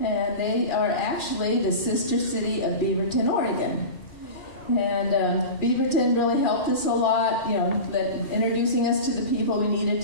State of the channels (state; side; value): late; right; 2.4 ms